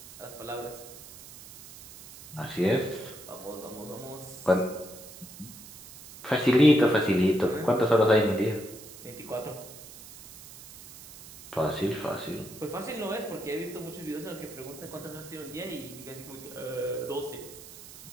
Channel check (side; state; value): right; noise; hiss, 16 dB below the sound